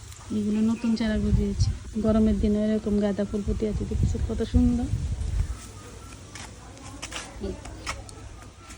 এগুলো নতুন চারা গজিয়েছে। গরমের দিনে এরকম গাঁদা ফুল ফুটে আছে, দেখছি কত সুন্দর,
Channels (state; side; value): identical; both; correlation 1.00